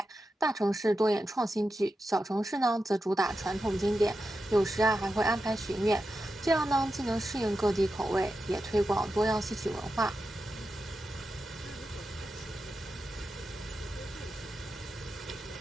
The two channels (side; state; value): both; normal; correlation 0.90